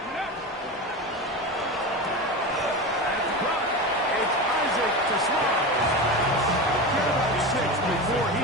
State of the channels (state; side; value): normal; both; correlation 0.24